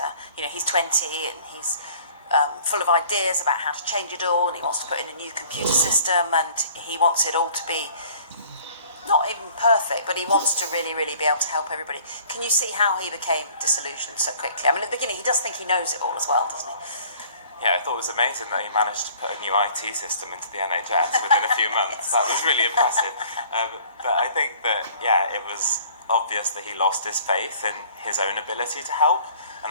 he's 20 and he's full of ideas about how to change it all, and he wants to put in a new computer system, and he wants it all to be not even perfect, but he wants to really, really be able to help everybody. Can you see how he became disillusioned so quickly? I mean, at the beginning, he does think he knows it all as well, doesn't he? Yeah, I thought it was amazing that he managed to put a new IT system into the NHS within a few months. That was really impressive. But I think that, yeah, it was obvious that he lost his faith in his own ability to help.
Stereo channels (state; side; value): inverted; both; correlation -0.53